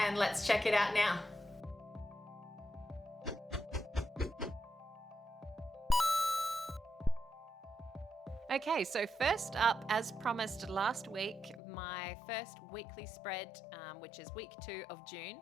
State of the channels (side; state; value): right; drops out; at 11.6 s